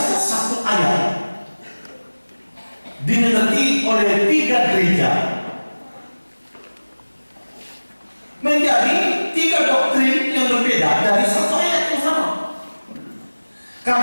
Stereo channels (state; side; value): inverted; both; correlation -1.00